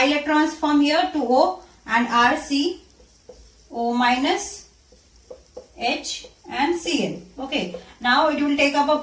electrons from here to O, and R C O minus H and Cl. Okay, now it will take up a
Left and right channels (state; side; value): identical; both; correlation 1.00